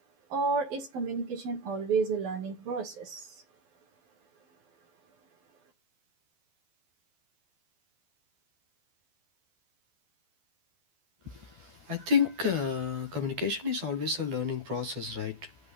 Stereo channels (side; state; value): left; late; 12 ms